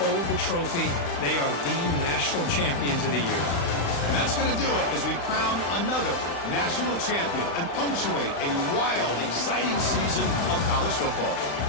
hold the trophy. They are the national champions of the year. And that's going to do it as we crown another national champion and punctuate a wild, exciting season of college football.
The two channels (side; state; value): right; late; 35 ms